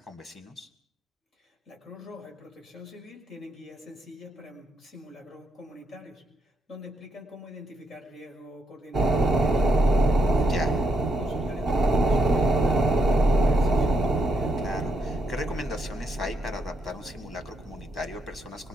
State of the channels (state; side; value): normal; both; correlation 0.79